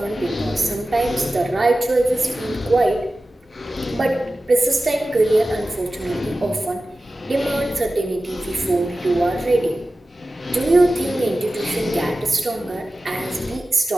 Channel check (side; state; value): both; normal; correlation 0.95